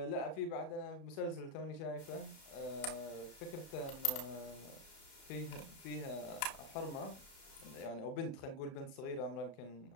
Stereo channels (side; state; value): right; late; 32 ms